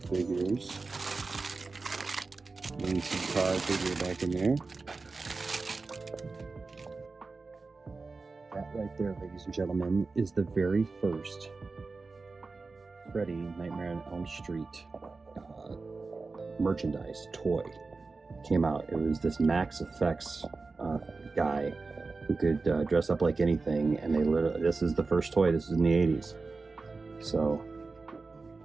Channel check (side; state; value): left; quieter; 3.9 dB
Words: Lindsay car figure back in there. That right there, ladies and gentlemen, is the very first Freddy Nightmare on Elm Street merchandise toy came out. It was this Max Effects guy who could dress up like anything, and this is the first toy. This is in the 80s, so